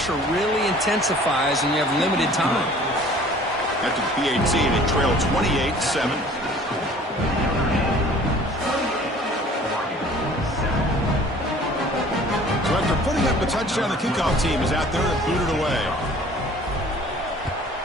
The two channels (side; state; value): both; normal; correlation 0.50